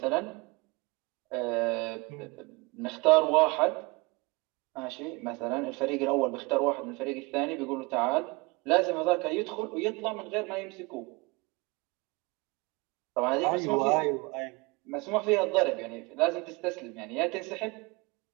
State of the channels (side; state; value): left; quieter; 26.1 dB